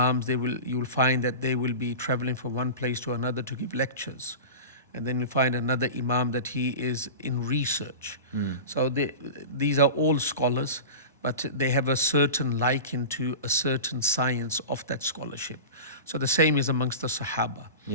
you will find that they will be traveling from one place to another to give lectures, and then you find another imam that he is in research. So these are all scholars, but they have a certain liking to a certain science of that scholarship. So the same is amongst the Sahaba.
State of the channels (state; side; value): inverted; both; correlation -0.31